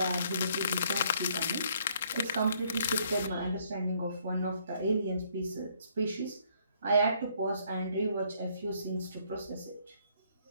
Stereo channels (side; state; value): both; inverted; correlation -0.66